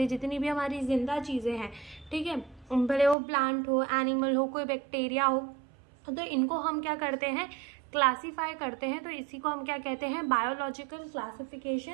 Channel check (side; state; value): left; drops out; at 3.2 s